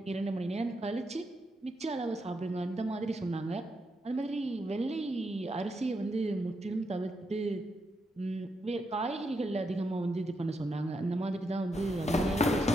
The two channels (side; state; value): both; normal; correlation 0.82